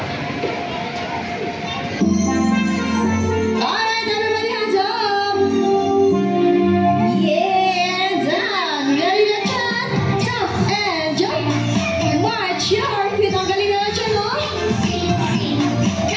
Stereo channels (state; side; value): identical; both; correlation 1.00